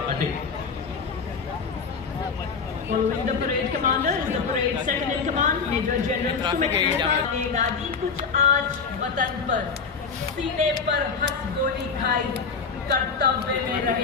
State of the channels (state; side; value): quieter; right; 5.3 dB